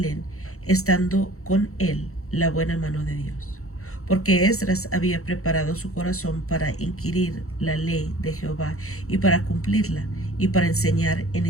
estando con él la buena mano de Dios, porque Esdras había preparado su corazón para inquirir la ley de Jehová y para cumplirla, y para enseñar en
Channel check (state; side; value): late; right; 0.64 ms